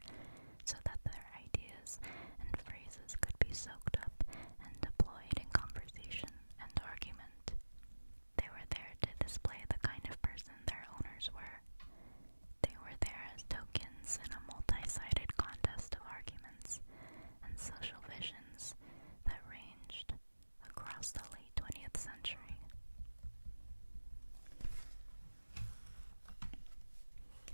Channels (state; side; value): inverted; both; correlation -1.00